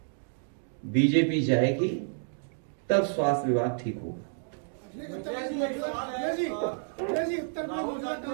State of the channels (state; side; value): silent; left; digital silence